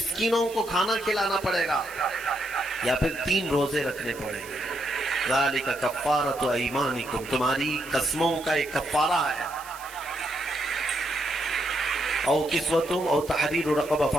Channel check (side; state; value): right; noise; hiss, 17 dB below the sound